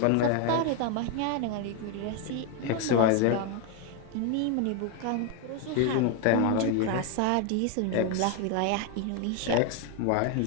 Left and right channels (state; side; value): different; both; correlation 0.01